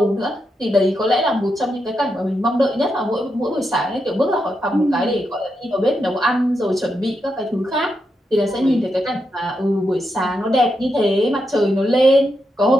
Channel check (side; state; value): both; normal; correlation 0.84